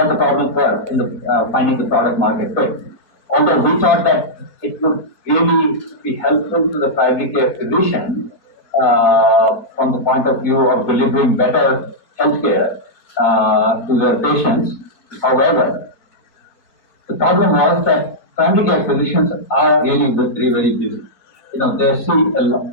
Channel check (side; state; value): right; late; 4.5 ms